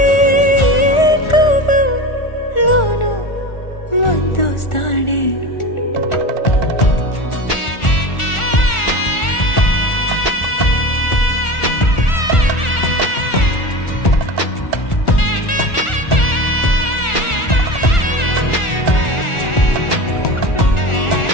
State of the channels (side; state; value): right; late; 1.4 ms